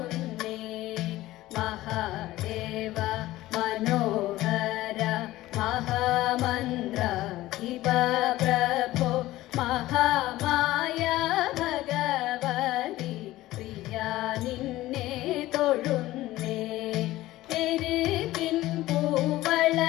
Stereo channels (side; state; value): right; quieter; 16.6 dB